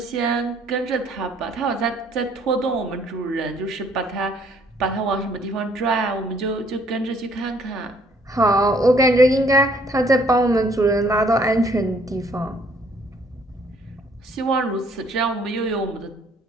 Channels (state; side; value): normal; both; correlation 0.63